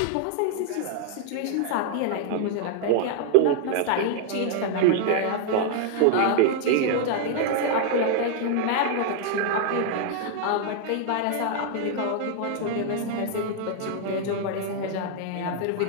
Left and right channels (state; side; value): different; both; correlation -0.01